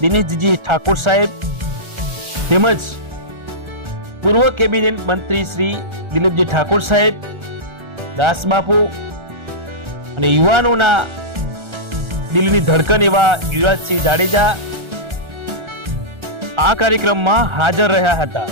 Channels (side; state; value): left; late; 1.4 ms